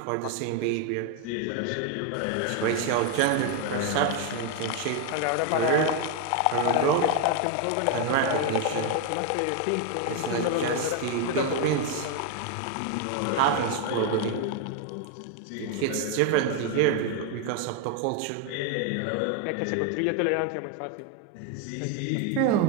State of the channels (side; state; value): both; different; correlation 0.01